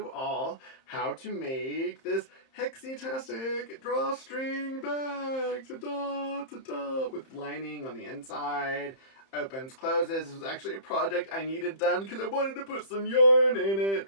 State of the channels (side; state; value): right; late; 30 ms